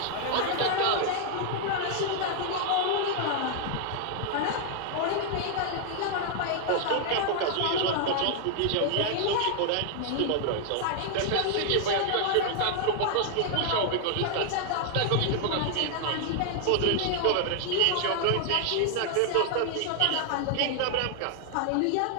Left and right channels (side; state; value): both; different; correlation 0.00